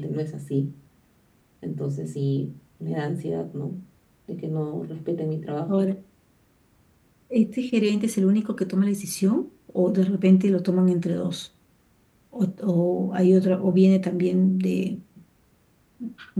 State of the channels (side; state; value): both; identical; correlation 1.00